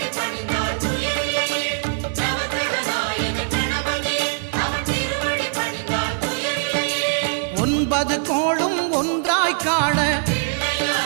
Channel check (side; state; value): left; silent; digital silence